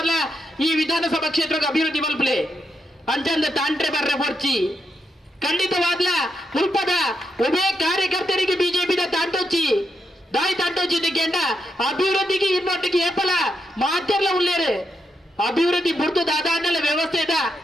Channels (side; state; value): both; normal; correlation 0.82